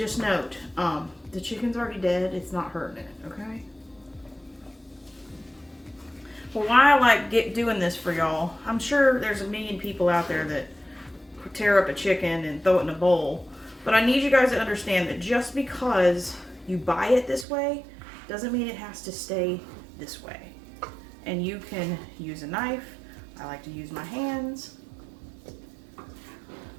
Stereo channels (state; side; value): drops out; left; at 17.4 s